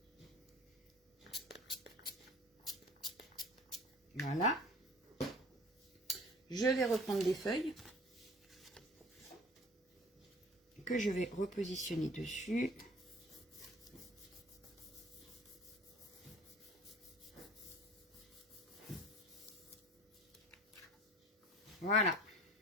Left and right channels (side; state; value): both; normal; correlation 0.46